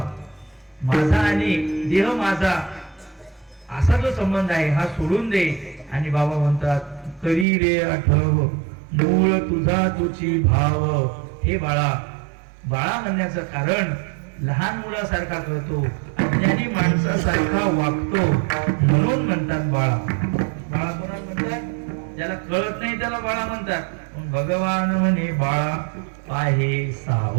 माझा आणि देह माझा असा जो संबंध आहे हा सोडून दे. आणि बाबा म्हणतात करी रे आठव मूळ तुझा तुझी भाव. हे बाळा, बाळा म्हणण्याचं कारण लहान मुलासारखा करतो, अज्ञानी माणसासारखा वागतो म्हणून म्हणतात बाळा. बाळा कोणाला म्हणतात? ज्याला कळत नाही त्याला बाळा म्हणतात. पण भगवान म्हणे बाळा पाहे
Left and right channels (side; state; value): left; drops out; at 7.5 s